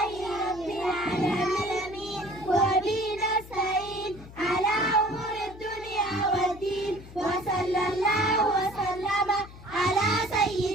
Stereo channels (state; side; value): noise; left; hum, 17 dB below the sound